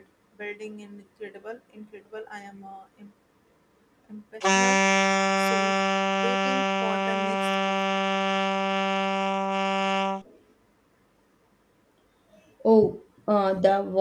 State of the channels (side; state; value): both; identical; correlation 1.00